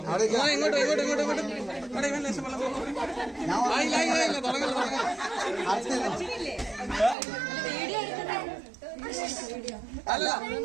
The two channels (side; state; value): left; drops out; at 7.2 s